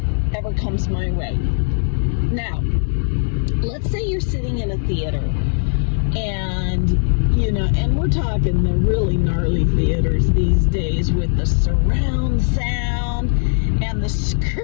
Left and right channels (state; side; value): silent; right; digital silence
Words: ever comes my way. Now, let's say you're sitting in a theater and, and we're talking the really gnarly theaters these days with the surround sound and the